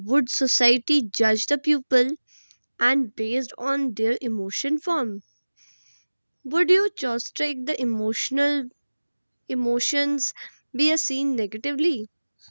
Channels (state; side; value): inverted; both; correlation -1.00